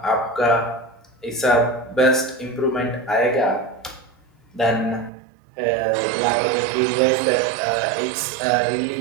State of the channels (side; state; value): left; drops out; at 5.1 s